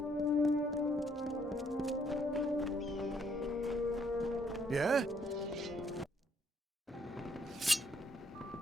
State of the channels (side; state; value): both; normal; correlation 0.68